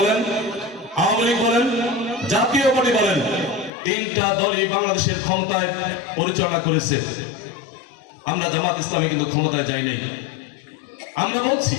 আওয়ামী লীগ বলেন, জাতীয় পার্টি বলেন, 3টা দলই বাংলাদেশের ক্ষমতায় পরিচালনা করেছে। আমরা জামাত ইসলামী কিন্তু ক্ষমতায় যাই নাই। আমরা বলছি,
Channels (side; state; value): right; drops out; at 3.7 s